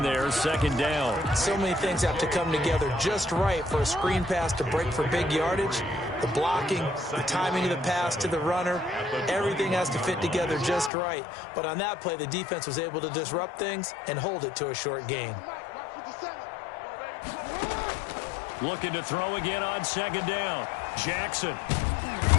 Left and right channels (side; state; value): right; drops out; at 10.9 s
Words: there, second down. So many things have to come together just right for a screen pass to break for big yardage. The blocking, the timing of the pass to the runner, everything has to fit together just right. But on that play, the defense was able to disrupt things and hold it to a short gain. Looking to throw again on second down. Jackson.